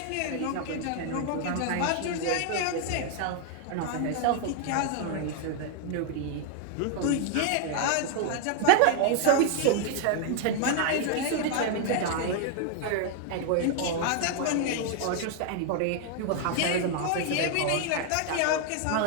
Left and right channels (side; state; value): both; different; correlation 0.00